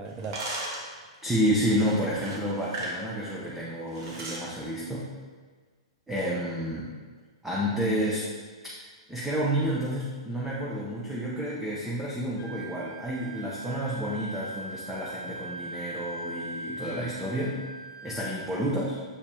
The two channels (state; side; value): normal; both; correlation 0.17